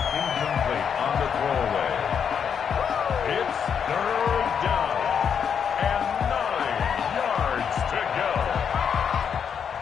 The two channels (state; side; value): quieter; right; 7.4 dB